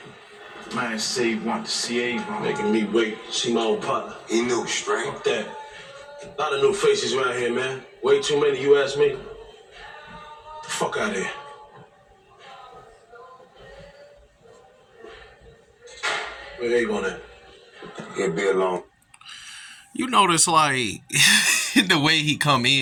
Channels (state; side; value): identical; both; correlation 1.00